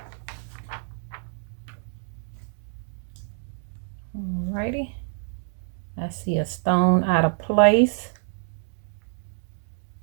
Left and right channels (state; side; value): silent; left; digital silence